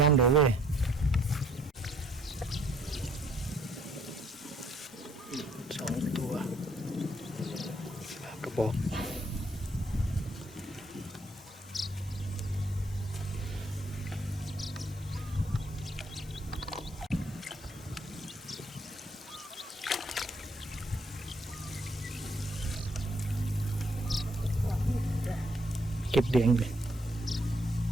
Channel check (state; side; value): normal; both; correlation 0.66